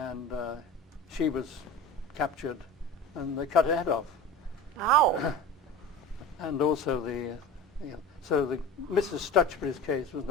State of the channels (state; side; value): normal; both; correlation 0.33